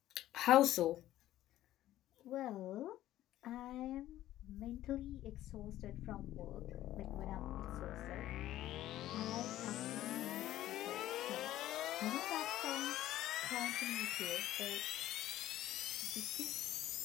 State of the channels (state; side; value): quieter; right; 13.9 dB